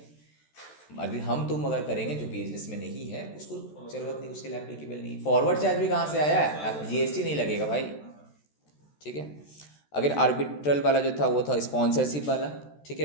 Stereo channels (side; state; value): right; late; 14 ms